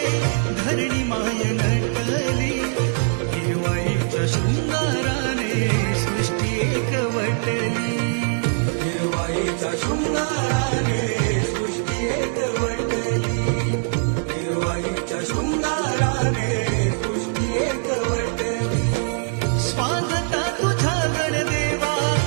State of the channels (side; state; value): left; silent; 64 dB below the other